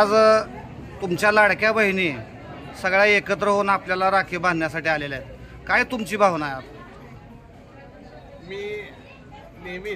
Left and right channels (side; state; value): both; identical; correlation 1.00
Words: तुमच्या लाडक्या बहिणी सगळ्या एकत्र होऊन आपल्याला राखी बांधण्यासाठी आलेल्या आहेत। काय तुमची भावना आहे? मी